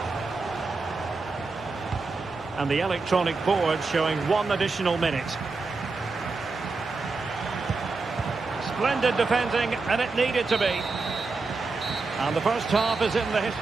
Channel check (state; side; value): quieter; left; 4.0 dB